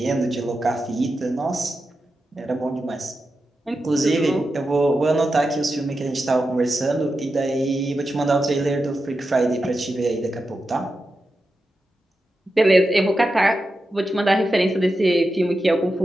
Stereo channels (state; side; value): normal; both; correlation 0.90